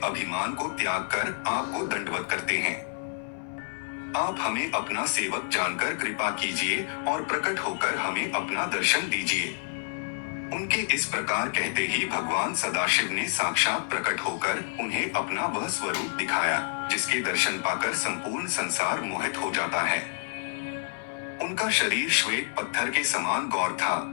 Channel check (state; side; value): silent; right; digital silence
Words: अभिमान को त्याग कर आपको दंडवत करते हैं। आप हमें अपना सेवक जानकर कृपा कीजिए और प्रकट होकर हमें अपना दर्शन दीजिए। उनके इस प्रकार कहते ही भगवान सदाशिव ने साक्षात प्रकट होकर उन्हें अपना वह स्वरूप दिखाया, जिसके दर्शन पाकर संपूर्ण संसार मोहित हो जाता है। उनका शरीर श्वेत पत्थर के समान गौर था,